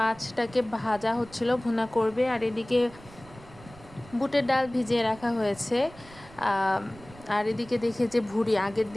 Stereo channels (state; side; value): noise; right; rumble, 21 dB below the sound